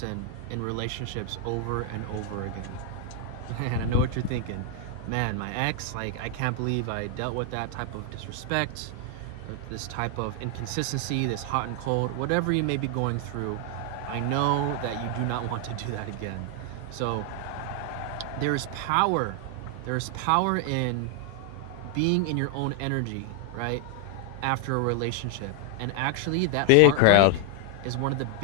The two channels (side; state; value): both; different; correlation 0.00